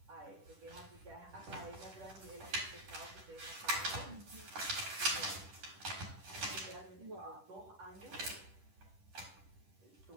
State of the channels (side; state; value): left; late; 10 ms